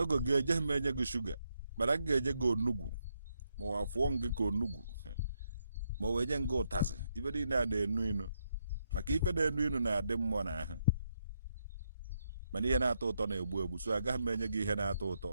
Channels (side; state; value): both; inverted; correlation -0.79